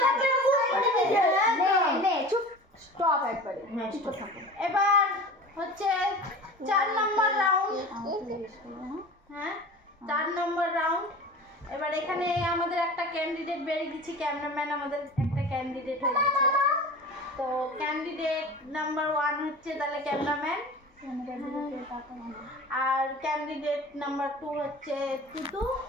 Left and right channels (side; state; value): both; normal; correlation 0.36